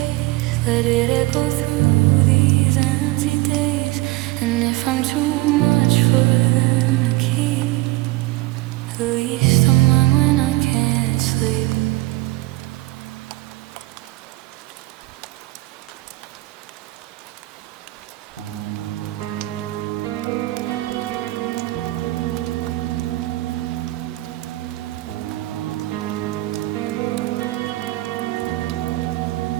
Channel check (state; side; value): quieter; left; 19.1 dB